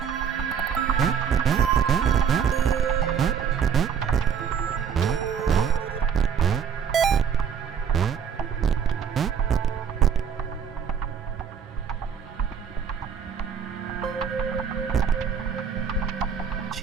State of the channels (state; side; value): quieter; left; 7.3 dB